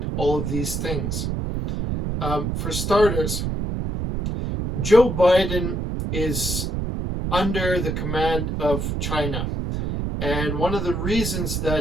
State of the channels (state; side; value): noise; right; rumble, 2 dB below the sound